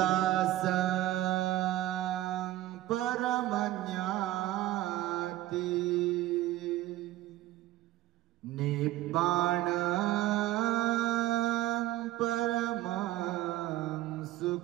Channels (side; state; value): left; quieter; 15.3 dB